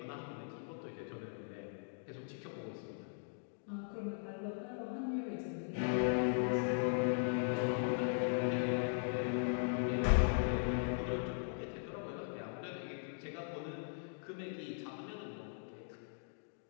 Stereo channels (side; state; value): right; silent; digital silence